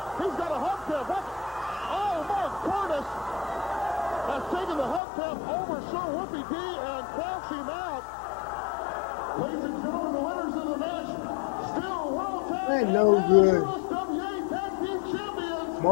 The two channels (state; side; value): drops out; right; at 5.0 s